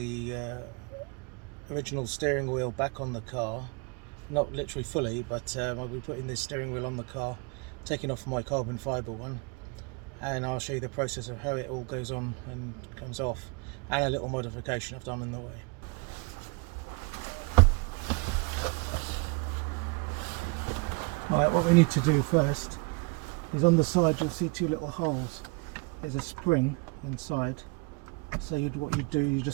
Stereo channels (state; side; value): quieter; left; 29.1 dB